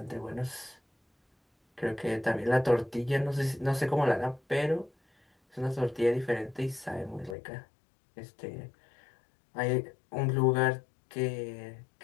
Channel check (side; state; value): right; drops out; at 7.4 s